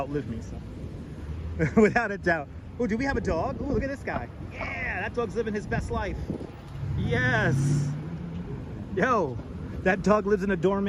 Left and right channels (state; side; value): identical; both; correlation 1.00